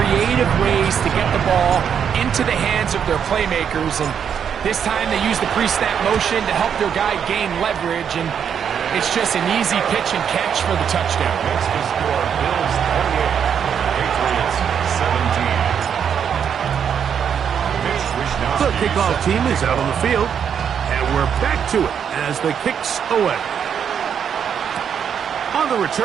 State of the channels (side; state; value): left; quieter; 7.9 dB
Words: ways to get the ball into the hands of their playmakers. And this time they use the pre-snap motion to help their guy gain leverage. And it's just an easy pitch and catch for the touchdown. That's the score. Bills 28, Patriots 17. The kickoff team is out on the field. And we're back to it as the kick's away. On the